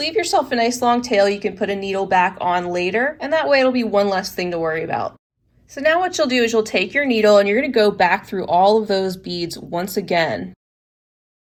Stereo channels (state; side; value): identical; both; correlation 1.00